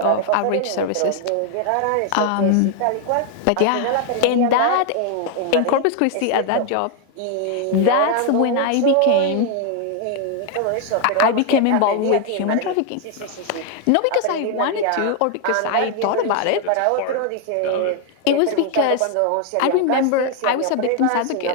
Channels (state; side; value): different; both; correlation 0.00